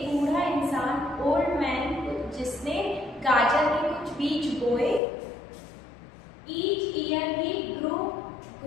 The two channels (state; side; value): drops out; right; at 5.0 s